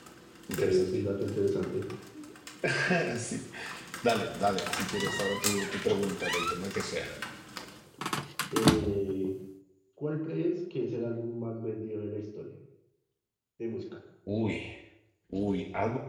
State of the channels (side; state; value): both; identical; correlation 1.00